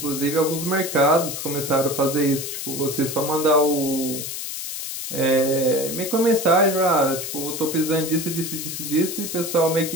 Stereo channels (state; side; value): noise; left; hiss, 6 dB below the sound